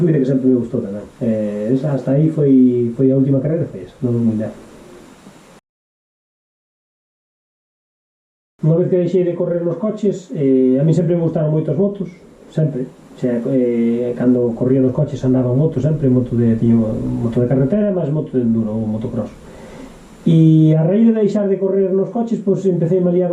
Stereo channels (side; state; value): both; identical; correlation 1.00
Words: que sempre me gustou tamén. Hasta aí foi a última carreira, foi esa, non moi leve. Unha vez que deixei de correr nos coches, a mí sempre me gustaron moito as motos, sempre. Cando corría nos coches andaba en moto sempre, tiño moto de carretera, máis moto de enduro ou motocross. E a raíz de deixar de correr nos coches, pois empecé a liar